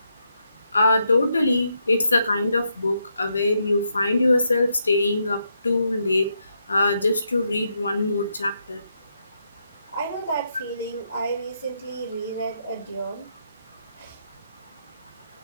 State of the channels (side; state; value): both; inverted; correlation -0.80